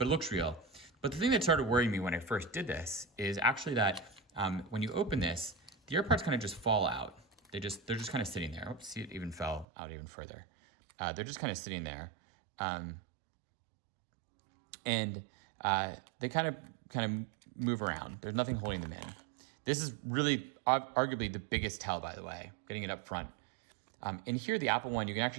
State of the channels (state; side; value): drops out; left; at 9.7 s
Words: it looks real. But the thing that started worrying me when I first did this is actually that when you open this, the AirPods kind of just fall out. They're just kind of sitting there. Oops, see, it even fell out even further. They're just kind of sitting there. And they kind of move around. There's nothing holding them in. This is really arguably the biggest tell, by the way, getting it up front. In here, the Apple one, you can